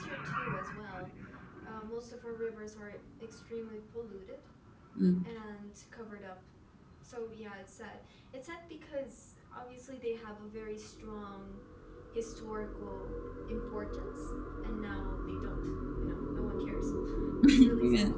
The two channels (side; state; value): both; identical; correlation 1.00